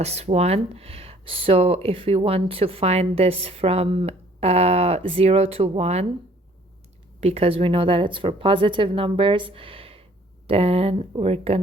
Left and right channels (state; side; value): normal; both; correlation 0.58